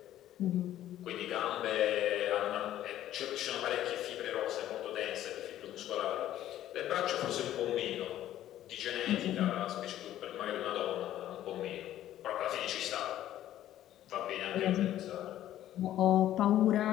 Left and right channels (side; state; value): right; quieter; 12.7 dB